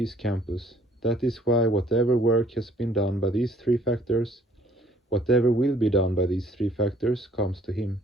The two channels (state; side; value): normal; both; correlation 0.60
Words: campus. That is why whatever work has been done by these three factors, whatever will be done by these three factors, comes to him.